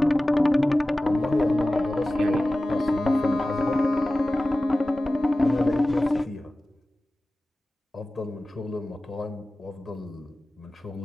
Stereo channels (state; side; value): normal; both; correlation 0.96